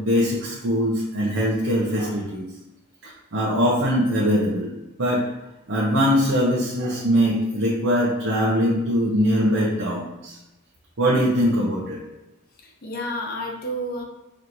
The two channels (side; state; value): both; normal; correlation 0.48